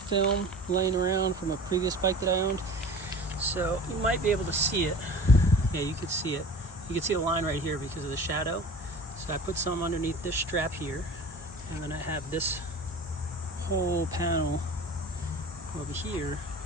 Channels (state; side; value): normal; both; correlation 0.40